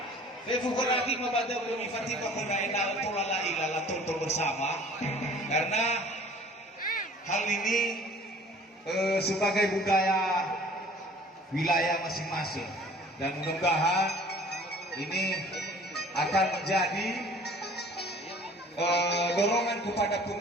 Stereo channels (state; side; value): normal; both; correlation 0.50